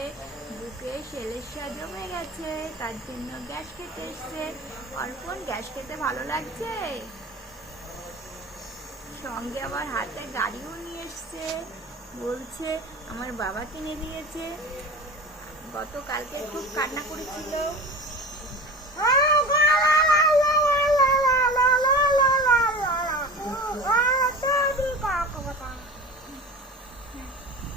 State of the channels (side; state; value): both; normal; correlation 0.34